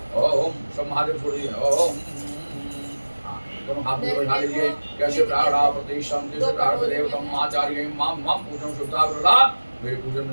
ओम सब महादेव छोड़ दिए। ओम दोनों हाथ में बैठा लीजिए। कैसे प्राणा प्रदीप संति देवतम आचार्य मां मां पूजन सुधाग्रा। मेरे पूजन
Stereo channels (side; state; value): both; inverted; correlation -1.00